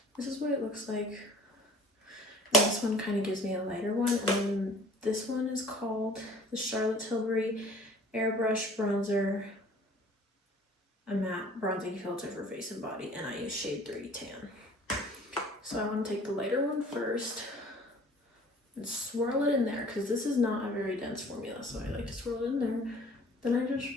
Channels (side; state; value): both; normal; correlation 0.49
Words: this is what it looks like. And this one kind of gives me a lighter one, and then This one is called the Charlotte Tilbury Airbrush Bronzer, a matte bronzing filter for face and body, and I use shade 30 tan. So I want to take the lighter one first and swirl it in there, because this is not a very dense formula, so I like to swirl it in there. Then I just